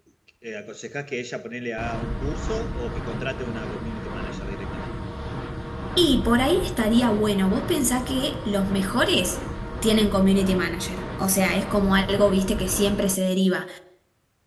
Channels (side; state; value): both; identical; correlation 1.00